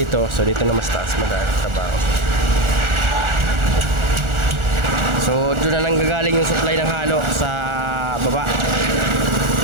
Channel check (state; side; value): late; left; 1.4 ms